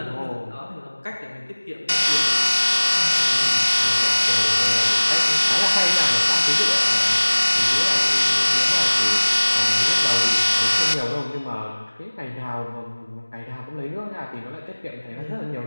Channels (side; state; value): both; inverted; correlation -1.00